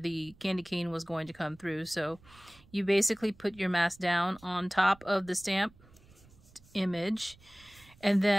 candy cane was going to come through. So you basically put your mask down on top of the stamp image, and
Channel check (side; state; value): right; noise; rumble, 25 dB below the sound